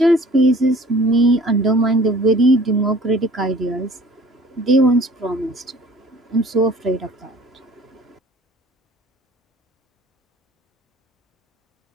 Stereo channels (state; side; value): normal; both; correlation 0.50